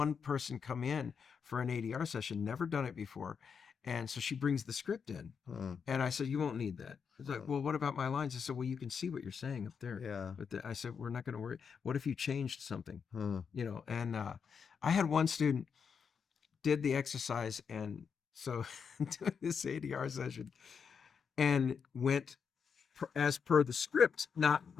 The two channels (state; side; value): quieter; right; 6.4 dB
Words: person come in for an ADR session, never done it before. And so she brings the script in. Huh. And I said, you won't need that. It's like, well, what about my lines? I said, well, you can see what you're saying up there. Yeah. But I said, we're not going to worry. What if you changed something? Huh. You know, and I had one student did the exercise. And so doing this ADR session and went as per the script, not